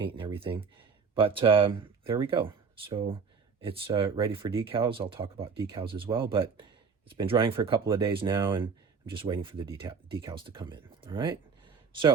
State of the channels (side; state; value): left; quieter; 5.6 dB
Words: and everything. But there we go. So it's ready for decals. I'll talk about decals as well, but it's been drying for a couple of days now, and I'm just waiting for the decals to come in. All right.